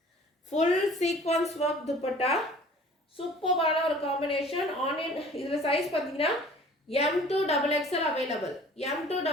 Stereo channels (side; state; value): both; normal; correlation 0.49